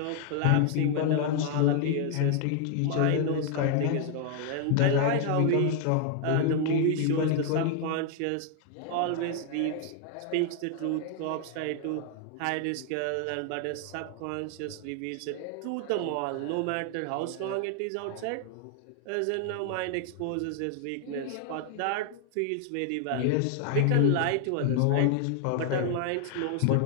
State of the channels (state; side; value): different; both; correlation 0.00